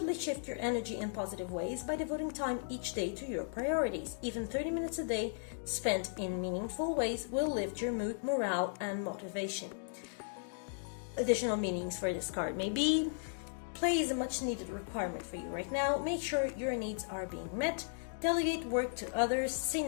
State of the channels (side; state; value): right; silent; digital silence